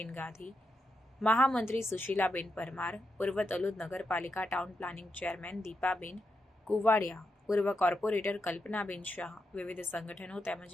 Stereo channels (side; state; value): both; normal; correlation 0.85